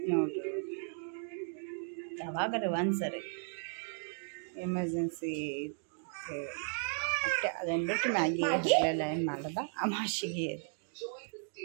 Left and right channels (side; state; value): left; silent; 54 dB below the other